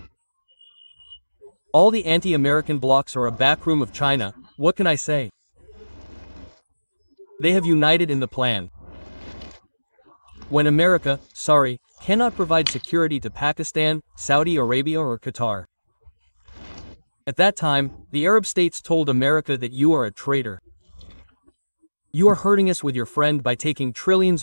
All the anti-American blocs are a backroom of China. What can I say? They have united in the plan. When America, cannot provide security to Pakistan, Saudi Arabia or Qatar. At that time, the Arab states told America that you are a traitor. You are hurting us with your friend by taking trillions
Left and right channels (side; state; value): both; inverted; correlation -1.00